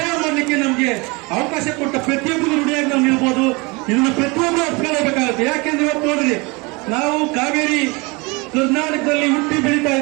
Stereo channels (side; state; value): left; quieter; 27.0 dB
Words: ಮಾಡಲಿಕ್ಕೆ ನಮಗೆ ಅವಕಾಶ ಕೊಟ್ಟ ಪ್ರತಿಯೊಬ್ಬರು ನುಡಿಯಾಗಿ ನಾವು ನಿಲ್ಬೋದು. ಇದನ್ನ ಪ್ರತಿಯೊಬ್ಬರು ಅರ್ಥಕೊಳ್ಳಬೇಕಾಗುತ್ತೆ. ಯಾಕೆಂದ್ರೆ ಇವತ್ತು ನೋಡ್ರಿ, ನಾವು ಕಾವೇರಿ ಕರ್ನಾಟಕದಲ್ಲಿ ಹುಟ್ಟಿ ಬೆಳೀತಾ